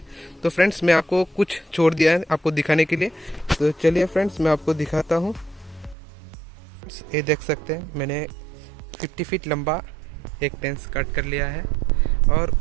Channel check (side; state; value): left; drops out; at 6.0 s